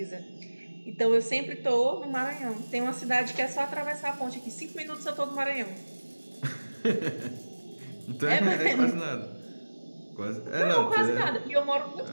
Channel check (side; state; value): both; inverted; correlation -1.00